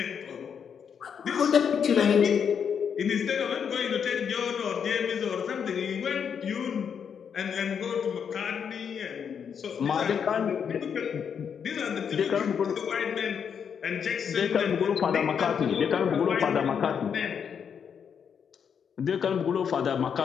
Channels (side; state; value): right; quieter; 7.3 dB